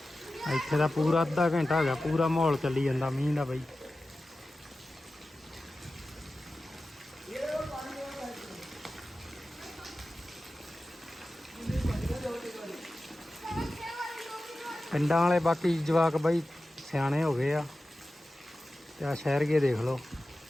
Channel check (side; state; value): both; normal; correlation 0.94